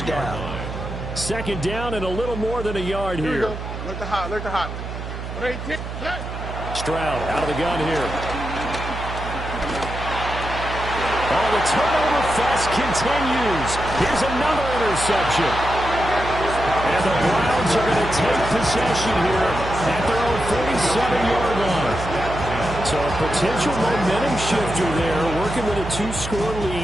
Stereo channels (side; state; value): right; noise; hum, 8 dB below the sound